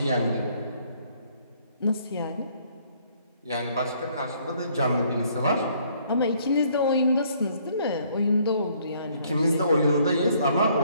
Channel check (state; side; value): inverted; both; correlation -0.64